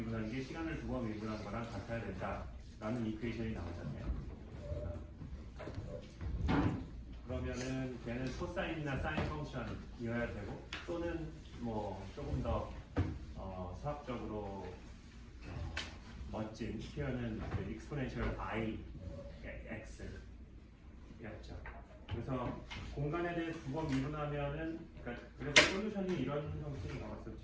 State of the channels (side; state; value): both; identical; correlation 1.00